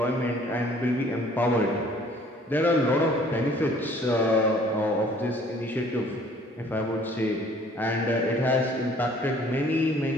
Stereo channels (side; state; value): both; normal; correlation 0.56